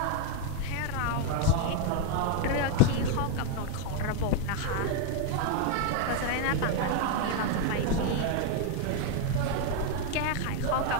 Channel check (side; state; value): both; different; correlation 0.01